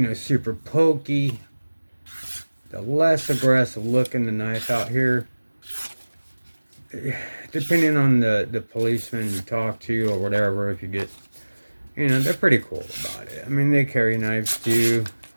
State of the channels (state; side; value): inverted; both; correlation -1.00